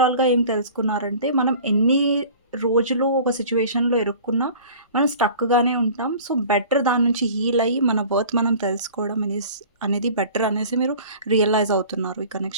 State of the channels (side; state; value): both; inverted; correlation -0.44